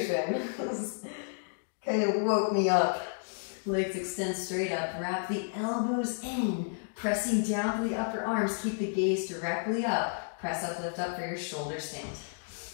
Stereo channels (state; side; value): silent; right; digital silence